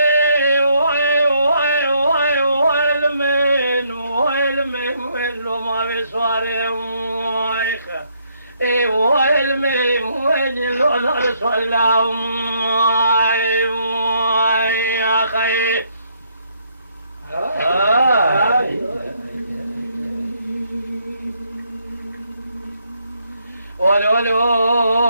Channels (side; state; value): both; inverted; correlation -0.72